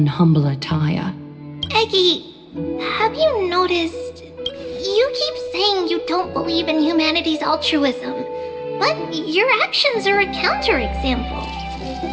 humble attire? Aggie, have you noticed? You keep saying you don't believe in humanity's altruism, but your actions are a counterexample.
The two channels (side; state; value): both; identical; correlation 1.00